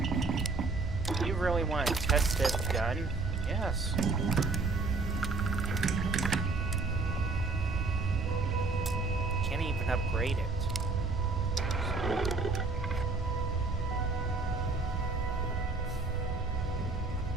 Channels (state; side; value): quieter; left; 3.8 dB